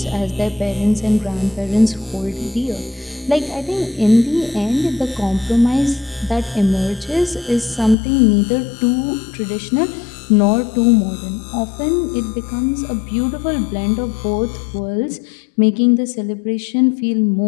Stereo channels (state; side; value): drops out; right; at 8.0 s